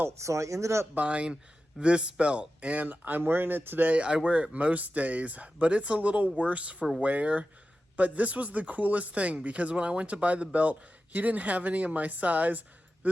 so I ended up buying this belt, and I'm wearing it today. I wear it most days, but it's a little worse for wear. But this was the coolest thing because when I went to buy the belt, he didn't have any of my size.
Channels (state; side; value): normal; both; correlation 0.93